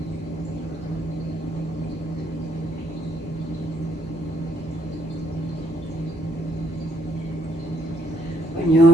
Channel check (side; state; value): both; normal; correlation 0.70